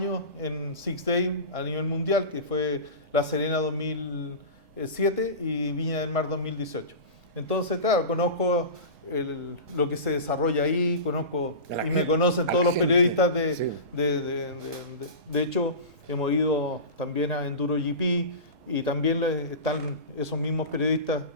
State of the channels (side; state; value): left; late; 3.7 ms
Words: en Six Day a nivel mundial, que fue La Serena 2007 y Viña del Mar 2018. Entonces, claro, conozco lo que se desarrolla ahí, conozco y me conocen todos los periodistas de hecho, hemos ido también a Enduro GP y también están esos mismos periodistas